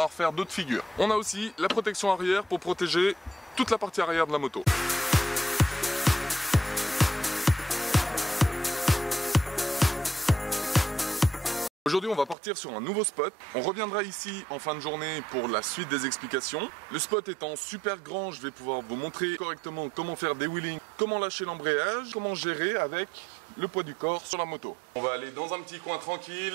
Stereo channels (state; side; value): drops out; left; at 12.4 s